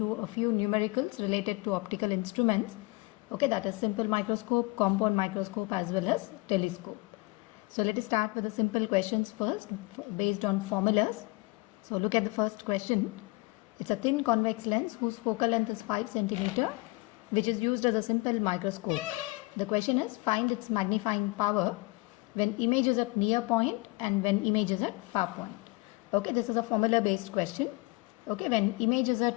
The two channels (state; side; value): quieter; right; 24.5 dB